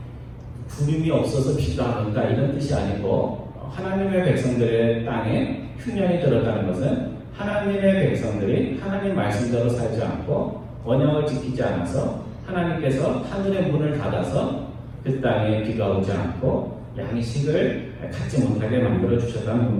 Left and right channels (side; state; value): both; identical; correlation 1.00